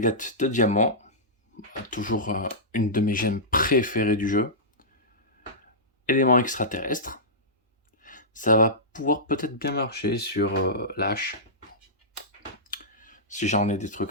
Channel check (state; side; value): normal; both; correlation -0.16